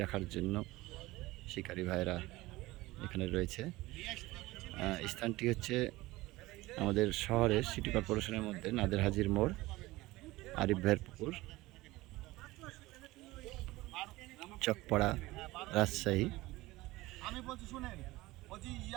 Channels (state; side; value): quieter; left; 19.3 dB